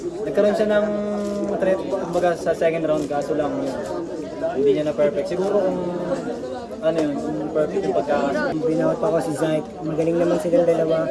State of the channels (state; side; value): identical; both; correlation 1.00